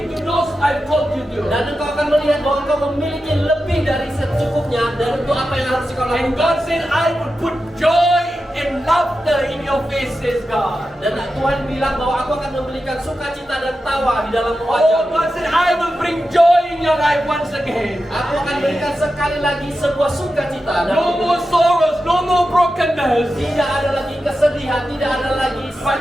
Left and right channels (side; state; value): both; normal; correlation 0.91